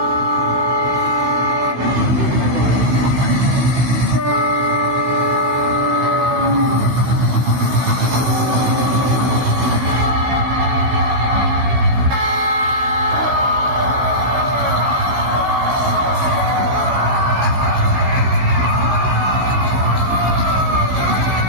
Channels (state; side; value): late; left; 16 ms